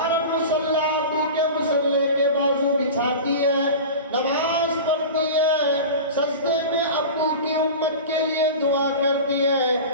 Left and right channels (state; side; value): inverted; both; correlation -0.32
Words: مصلی ابو کے مصلی کے بازو بچھاتی ہے، نماز پڑھتی ہے، سجدے میں ابو کی امت کے لیے دعا کرتی ہے،